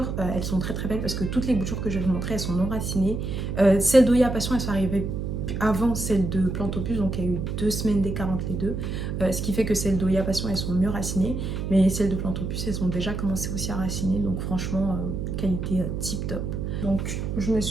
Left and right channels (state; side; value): noise; right; hum, 3 dB below the sound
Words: elles sont très très belles parce que toutes les boutures que je vais vous montrer elles sont non racinées. Celles d'Oya Passion elles sont arrivées avant celle de Plantopus, donc il y a eu 2 semaines d'écart entre les deux, ce qui fait que celles d'Oya Passion elles sont mieux racinées, mais celles de Plantopus elles ont déjà commencé aussi à raciner, donc franchement qualité tip top. Donc je me